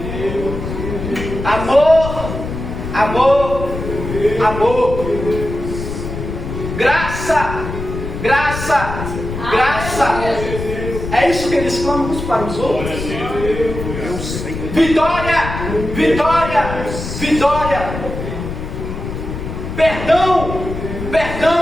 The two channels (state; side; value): noise; left; rumble, 7 dB below the sound